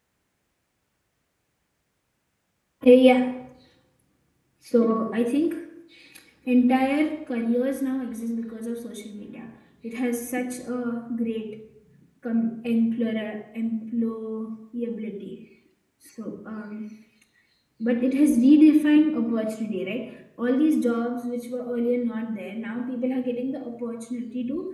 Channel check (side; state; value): both; identical; correlation 1.00